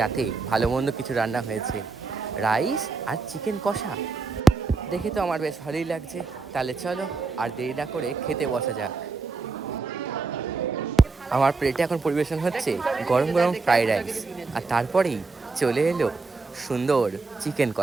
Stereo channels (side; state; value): left; quieter; 4.2 dB